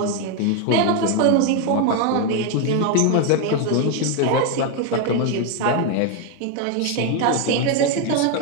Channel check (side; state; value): both; different; correlation 0.01